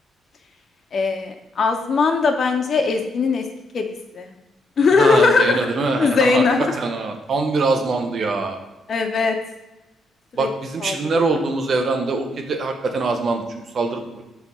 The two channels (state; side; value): normal; both; correlation 0.75